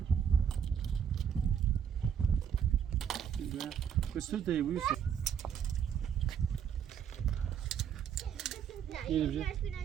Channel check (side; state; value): left; quieter; 8.0 dB